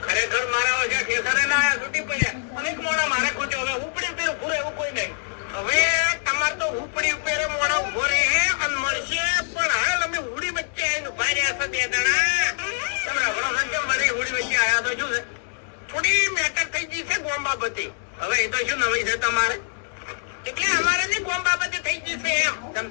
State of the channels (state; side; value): silent; right; digital silence